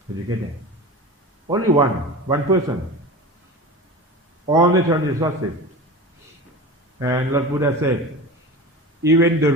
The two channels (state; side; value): normal; both; correlation 0.31